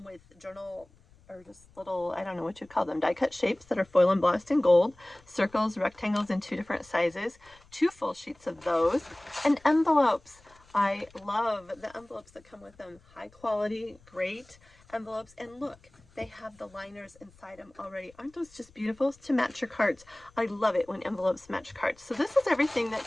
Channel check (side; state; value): left; noise; rumble, 28 dB below the sound